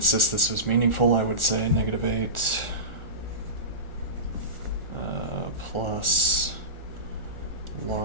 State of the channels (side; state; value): right; late; 1.4 ms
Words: this was meaningful, I would say -8 plus